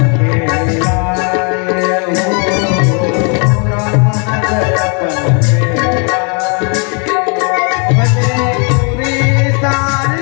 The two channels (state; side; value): quieter; right; 37.2 dB